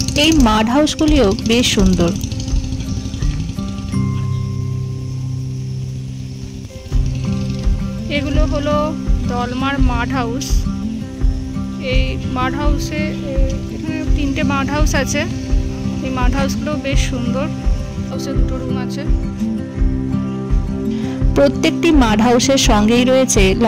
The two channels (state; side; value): identical; both; correlation 1.00